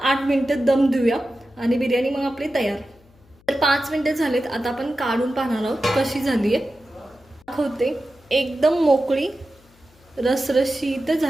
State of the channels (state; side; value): noise; left; hum, 29 dB below the sound